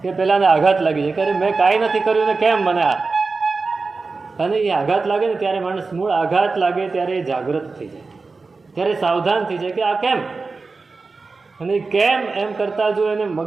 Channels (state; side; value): quieter; left; 4.1 dB